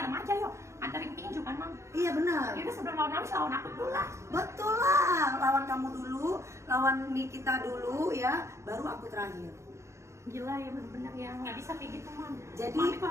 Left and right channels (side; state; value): left; late; 0.14 ms